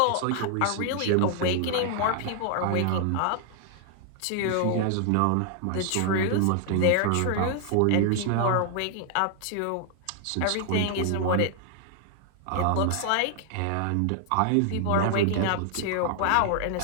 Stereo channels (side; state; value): both; different; correlation 0.00